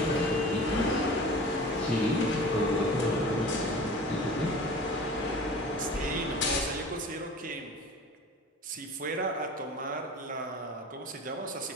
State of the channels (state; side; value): normal; both; correlation 0.40